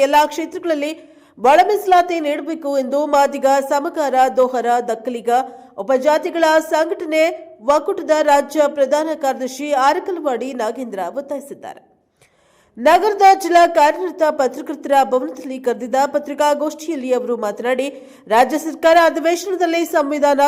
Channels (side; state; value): both; identical; correlation 1.00